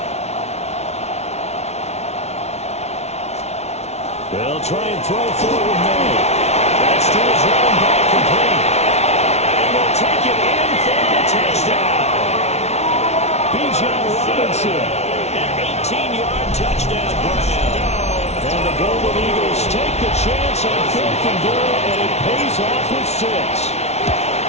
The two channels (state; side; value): late; right; 0.31 ms